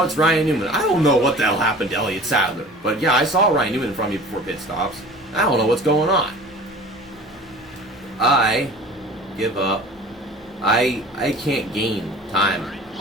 it's Ryan Newman. I don't know what the hell happened to Elliott Sadler. But yeah, I saw Ryan Newman in front of me before pit stops. I don't know what's going on. I give up. I can't gain time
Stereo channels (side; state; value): both; normal; correlation 0.42